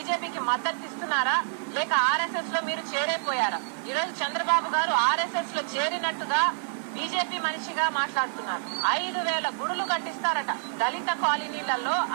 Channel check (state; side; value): silent; left; digital silence